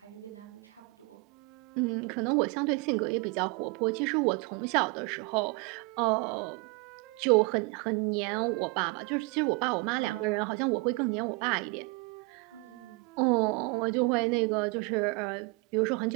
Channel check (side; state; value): left; quieter; 27.0 dB